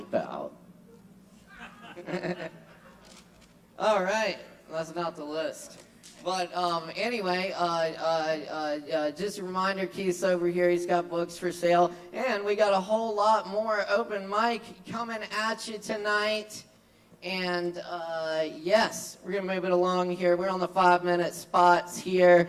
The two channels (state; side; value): identical; both; correlation 1.00